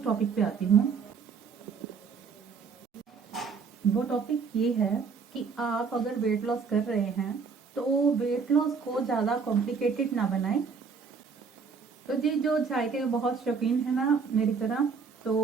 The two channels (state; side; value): quieter; left; 5.5 dB